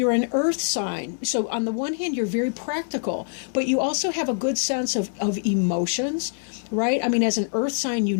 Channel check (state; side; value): silent; right; 62 dB below the other